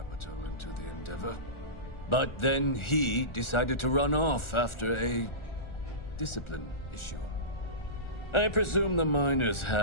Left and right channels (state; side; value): late; right; 1.4 ms